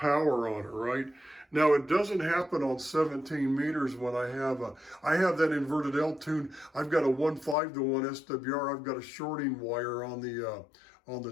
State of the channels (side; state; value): right; drops out; at 7.6 s